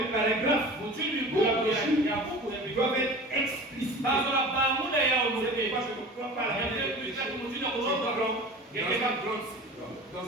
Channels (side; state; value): both; normal; correlation 0.37